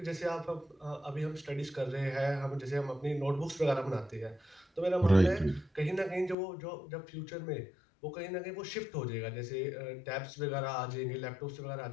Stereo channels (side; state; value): right; drops out; at 6.4 s